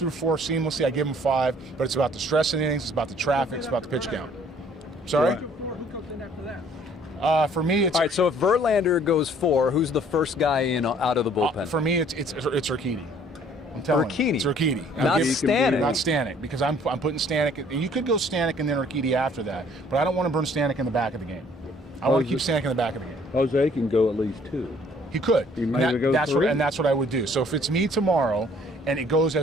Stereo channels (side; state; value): both; normal; correlation 0.58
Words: 4 seamlessly, I give him 5. But it's about the stress in innings, it's about the traffic, it's about the pitch count. Sorry. Who comes in after that? For me, it's all right. So if Verlander goes 4, who's the first guy in out of the bullpen? For me, it's Urquidy. I'm telling you, it's Urquidy. Not Stanek. Not Stanek, because I'm putting Stanek. And you could go Stanek and then Urquidy after that, but I don't want to burn Stanek in the back of the game. I want to keep Stanek in the back of the game. Jose can go at least 2. He could. He might go 3. That's what I would do. So if it's me tomorrow and it goes